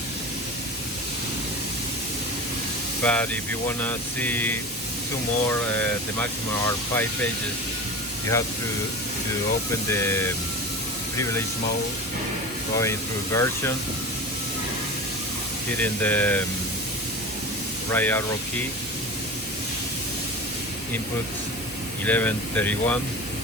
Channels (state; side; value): normal; both; correlation 0.30